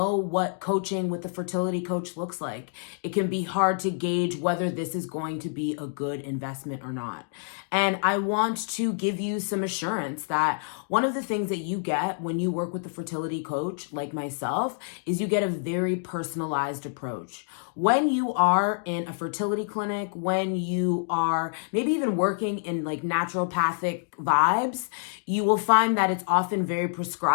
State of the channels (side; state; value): right; silent; digital silence